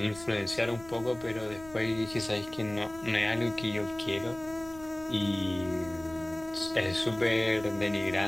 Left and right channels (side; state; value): left; noise; rumble, 18 dB below the sound